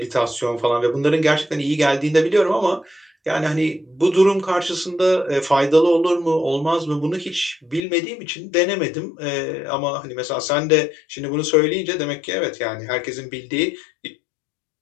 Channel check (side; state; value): right; drops out; at 7.8 s